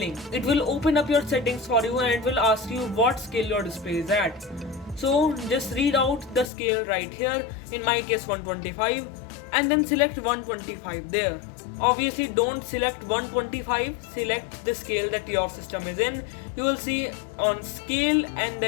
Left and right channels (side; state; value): right; drops out; at 6.5 s